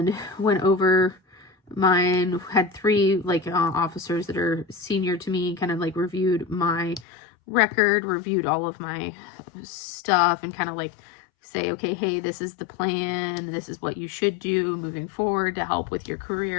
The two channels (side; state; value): right; drops out; at 7.1 s